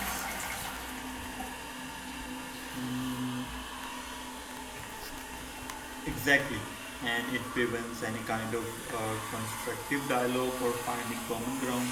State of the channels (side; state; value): both; identical; correlation 1.00